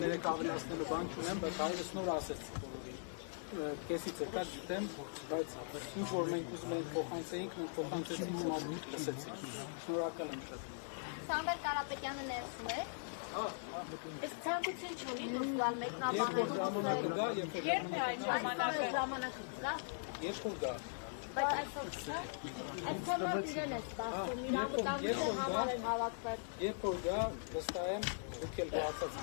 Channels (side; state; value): right; silent; digital silence